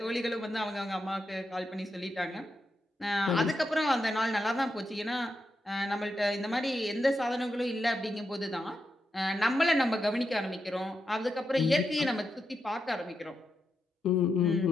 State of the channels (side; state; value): both; normal; correlation 0.85